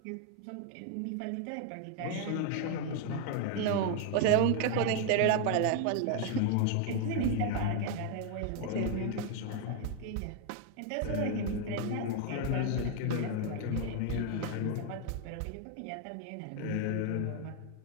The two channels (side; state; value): both; different; correlation 0.00